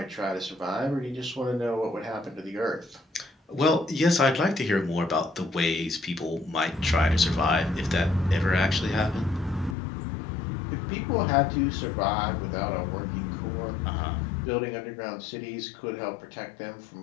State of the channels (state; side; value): drops out; right; at 9.8 s